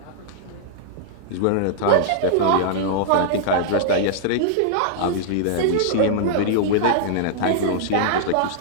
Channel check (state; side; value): different; both; correlation -0.01